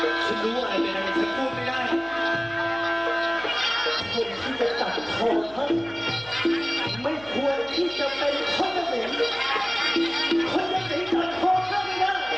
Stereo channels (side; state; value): right; noise; hum, 23 dB below the sound